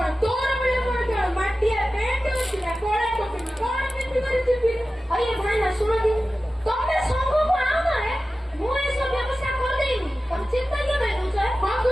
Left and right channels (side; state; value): both; normal; correlation 0.95